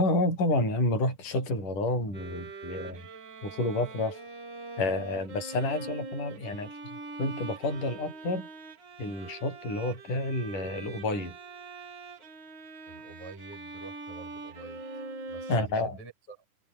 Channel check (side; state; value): right; late; 10 ms